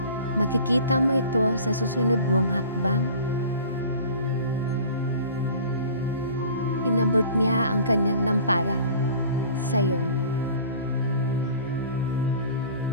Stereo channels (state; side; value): inverted; both; correlation -0.44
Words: makikita mo ito sa susunod mong hakbang. Inabot niya ang kanyang lampara sa'yo.